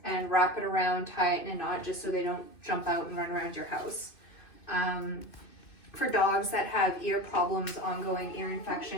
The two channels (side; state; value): right; late; 2.5 ms